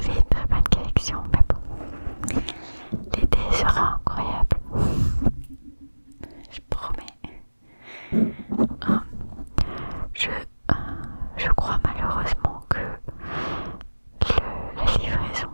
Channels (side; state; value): both; inverted; correlation -1.00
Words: une très bonne collection. Mais bon, l'été sera incroyable. Je promets. Je crois malheureusement que la livraison